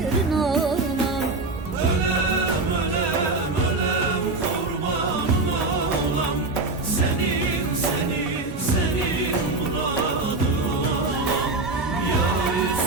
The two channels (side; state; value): left; quieter; 3.3 dB